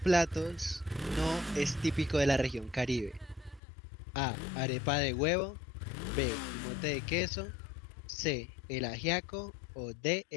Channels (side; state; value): right; drops out; at 3.6 s